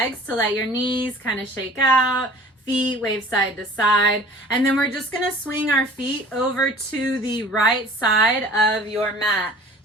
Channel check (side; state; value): both; normal; correlation 0.47